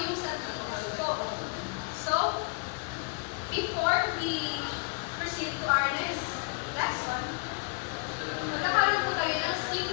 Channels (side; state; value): right; quieter; 34.3 dB